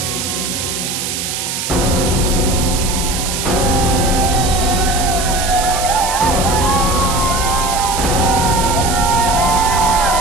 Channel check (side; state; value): right; noise; hiss, 4 dB below the sound